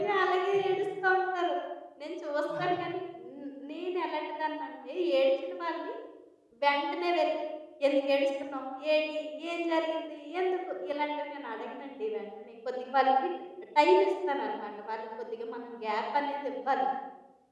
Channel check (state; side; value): identical; both; correlation 1.00